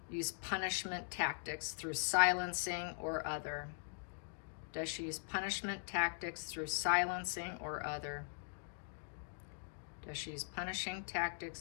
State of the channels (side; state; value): right; silent; digital silence